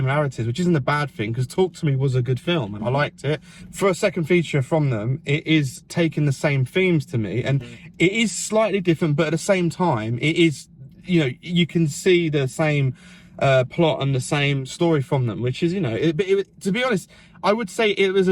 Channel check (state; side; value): identical; both; correlation 1.00